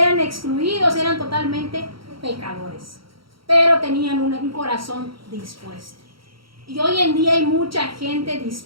excluidos, eran totalmente pecadores, pero tenían un corazón dispuesto. Y hoy en día hay mucha gente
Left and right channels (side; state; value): left; late; 0.74 ms